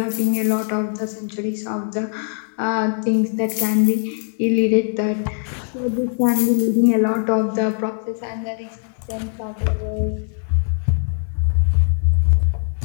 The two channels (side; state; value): right; silent; digital silence